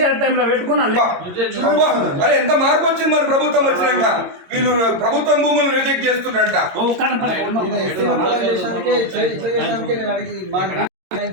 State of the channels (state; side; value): late; left; 22 ms